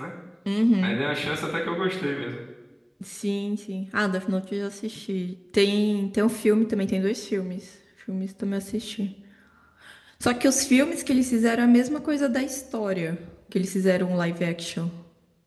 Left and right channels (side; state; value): both; identical; correlation 1.00